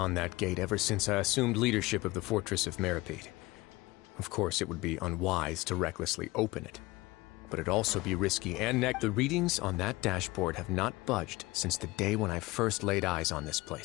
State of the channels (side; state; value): right; quieter; 21.0 dB